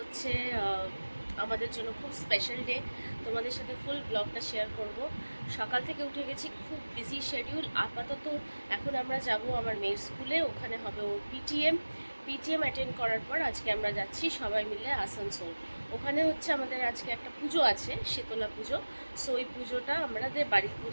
আমাদের জন্য খুব স্পেশাল ডে। তোমাদের সাথে ফুল ব্লগটা শেয়ার করব। সকাল থেকে উঠে গেছি, খুব বিজি শিডিউল। আপাতত এখন আমরা যাব আমার মেয়ের স্কুলে, ওখানে হবে ওর পিটিএম অ্যাটেন্ড করার পর আজকে আমরা যাচ্ছি সবাই মিলে আসানসোল। ওখানে হচ্ছে আমাদের আজকে একটা পুজো আছে, শীতলা পুজো। সো ওই পুজোটা আমাদের বাড়ির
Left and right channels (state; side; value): inverted; both; correlation -1.00